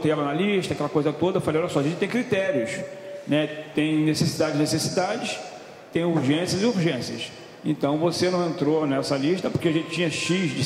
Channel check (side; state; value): both; identical; correlation 1.00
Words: ela na lista, aquela coisa toda. Eu falei, olha só, a gente tem critérios, né, tem necessidades, tem urgências e urgências. Então você não entrou nessa lista porque a gente tinha X de